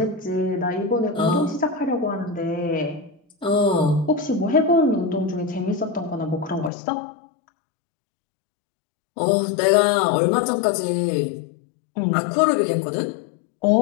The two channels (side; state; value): right; drops out; at 6.7 s